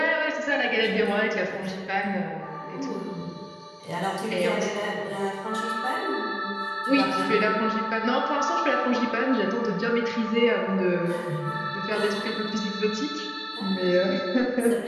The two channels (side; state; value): both; identical; correlation 1.00